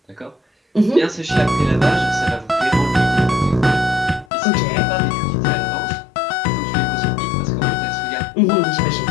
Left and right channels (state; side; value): drops out; right; at 4.2 s